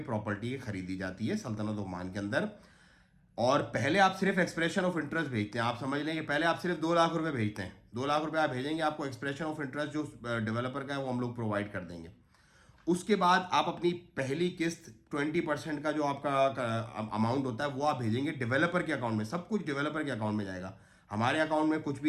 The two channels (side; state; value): both; identical; correlation 1.00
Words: प्रॉपर्टी खरीदी जाती है सल्तनत ओमान के अंदर, और पहले आप सिर्फ एक्सप्रेशन ऑफ इंटरेस्ट भेजते हैं। आप समझ लें कि पहले आप सिर्फ 2 लाख रुपए भेजते हैं। 2 लाख रुपए आप भेजेंगे, आपको एक्सप्रेशन ऑफ इंटरेस्ट जो डेवलपर का है वो हम लोग प्रोवाइड कर देंगे। उसके बाद आप अपनी पहली किस्त 20% का जो आपका अमाउंट होता है वो आप भेजेंगे डेवलपर के अकाउंट में। सब कुछ डेवलपर के अकाउंट में जाएगा, हमारे अकाउंट में कुछ